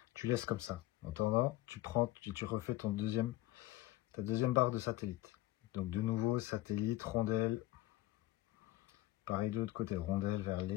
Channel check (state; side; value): quieter; right; 16.6 dB